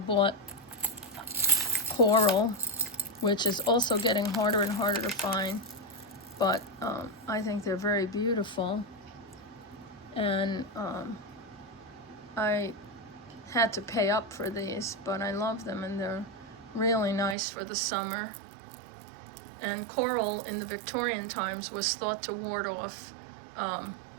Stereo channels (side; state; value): left; drops out; at 17.4 s